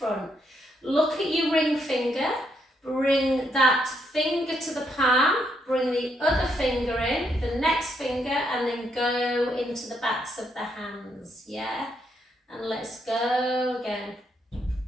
Look at your ring finger. Bring that finger to the palm. Bring the other finger in, the next finger, and then go into the backs of the hands. Yeah? And let's go again.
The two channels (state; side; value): normal; both; correlation 0.76